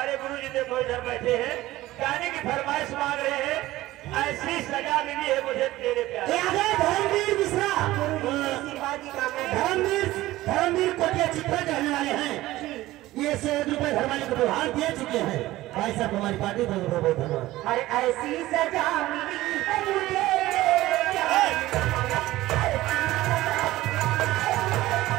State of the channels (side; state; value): left; quieter; 16.8 dB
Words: गुरु जी देखो इधर बैठे हैं गाने की फरमाइश मांग रहे हैं। ऐसी सजा मिली है मुझे तेरे प्यारे। धर्मवीर मिश्रा धर्मवीर कोटिया चित्रा कहने वाले हैं। ये 100 रुपए धर्माली को उपहार दे चुके हैं। भाई साहब हमारी पार्टी बहुत बहुत धन्यवाद। अरे ऐसी सजा मिली है मुझे